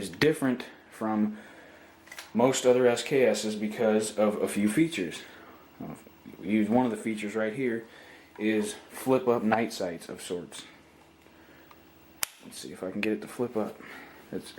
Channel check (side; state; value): both; identical; correlation 1.00